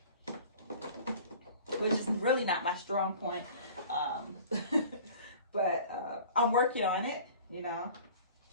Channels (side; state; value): both; inverted; correlation -0.45